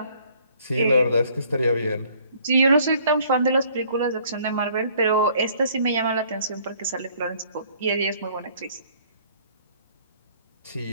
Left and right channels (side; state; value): both; inverted; correlation -0.60